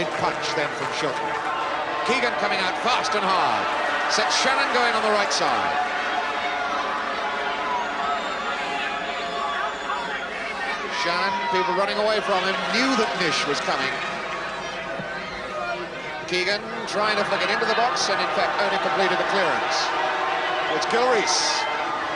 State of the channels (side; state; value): both; identical; correlation 1.00